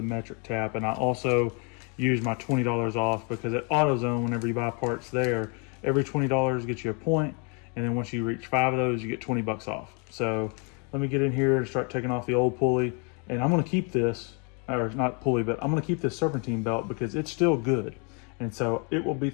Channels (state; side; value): quieter; right; 35.4 dB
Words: metric tap. And I also use my $20 off because at AutoZone, whenever you buy parts there, every $20 gets you a point, and then once you reach 5 of those, you get 20 bucks off. So let me get in here and start taking off the old pulley, and I'm gonna keep this, or not pulley, but I'm gonna keep this serpentine belt because it's still good. And so it will be